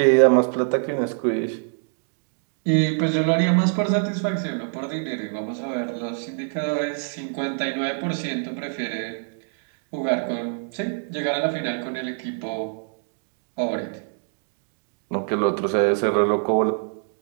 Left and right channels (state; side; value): silent; left; 59 dB below the other